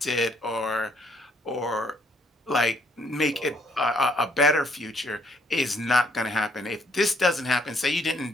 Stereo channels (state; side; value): normal; both; correlation 0.68